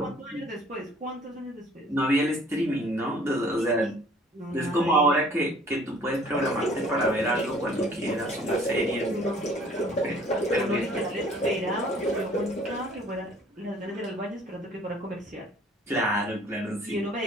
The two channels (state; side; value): normal; both; correlation 0.54